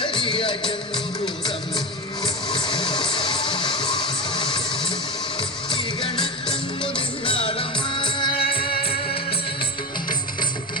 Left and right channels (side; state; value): both; normal; correlation 0.22